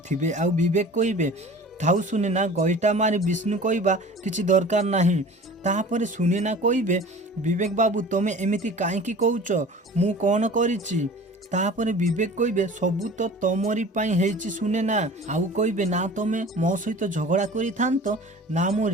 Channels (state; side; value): normal; both; correlation 0.42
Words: आउ विवेक कहिबे थाउ सुनेना गईटा मारी विष्णु कहवा किसी दरकार नहीं। तापर सुनेना कहिबे विवेक बाबू तमे एमिति काईकी कहूच, मु कौन करिछि। तापर विवेक कहिबे सबू तो तमरी पाई हेइछि सुनेना। आउ कहिबे ना तमे मो सहित झगड़ा करि थांत, ना मो